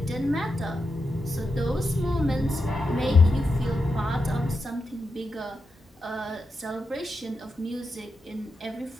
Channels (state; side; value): normal; both; correlation 0.87